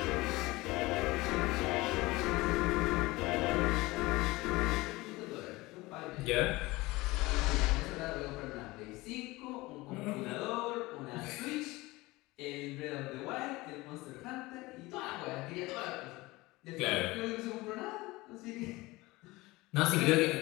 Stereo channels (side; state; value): right; quieter; 21.0 dB